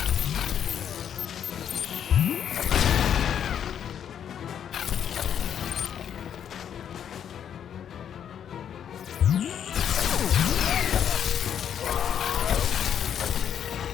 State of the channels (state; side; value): quieter; right; 8.9 dB